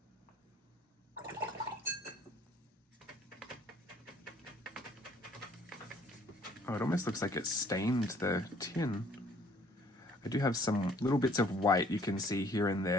Oh, it almost looks like it stained the tin. I do have some little bits of white you can see here and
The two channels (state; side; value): normal; both; correlation 0.59